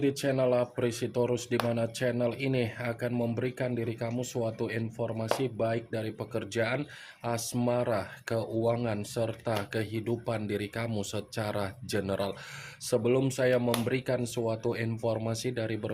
channel Apresitorus, di mana channel ini akan memberikan diri kamu suatu informasi baik dari pekerjaan, asmara, keuangan, serta kehidupan diri kamu secara general. Sebelum saya memberikan suatu informasi dari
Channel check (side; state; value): both; identical; correlation 1.00